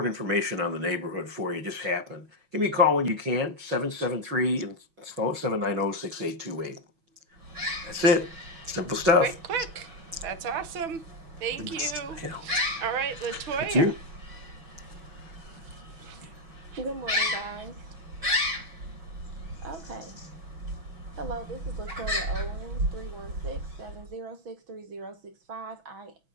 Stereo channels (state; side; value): late; left; 6.1 ms